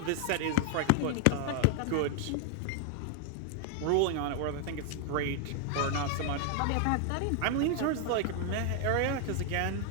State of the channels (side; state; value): both; different; correlation 0.00